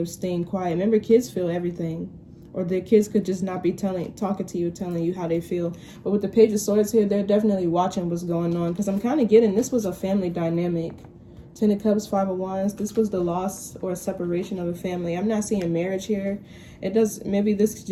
staying quiet. Remember, kids feel everything. Or the kids could just not be talking to you, telling you how they feel. But with the Page of Swords here, they're definitely watching what's going on. Because I'm kind of getting, this was a family dynamic. Ten of Cups, Five of Wands. This was the loss or separation of a family. I'm not seeing marriage here. It does, maybe this could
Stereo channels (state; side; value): identical; both; correlation 1.00